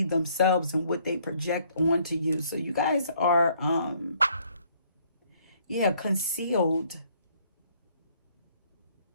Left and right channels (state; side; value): inverted; both; correlation -0.64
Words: themselves and what they project onto you. So you guys are, concealed.